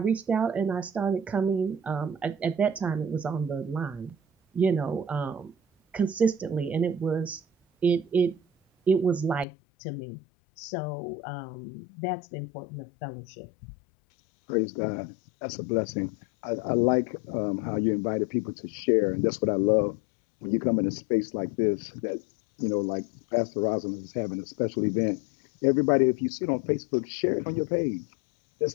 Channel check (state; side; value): drops out; right; at 9.5 s